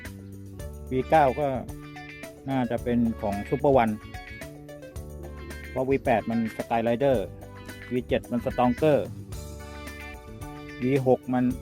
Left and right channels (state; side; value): identical; both; correlation 1.00